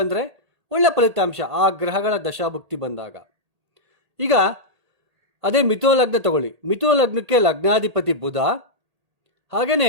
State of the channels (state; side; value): late; left; 1.8 ms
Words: ಅಂದರೆ ಒಳ್ಳೆಯ ಫಲಿತಾಂಶ ಆ ಗ್ರಹಗಳ ದಶಾಭುಕ್ತಿ ಬಂದಾಗ. ಈಗ ಅದೇ ಮಿಥುನ ಲಗ್ನ ತಗೊಳ್ಳಿ. ಮಿಥುನ ಲಗ್ನಕ್ಕೆ ಲಗ್ನಾಧಿಪತಿ ಬುಧ,